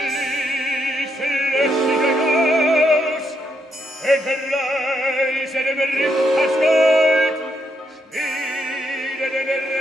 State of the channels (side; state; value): both; normal; correlation 0.78